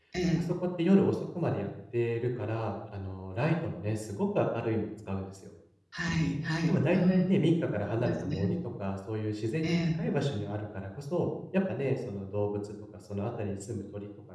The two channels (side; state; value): both; identical; correlation 1.00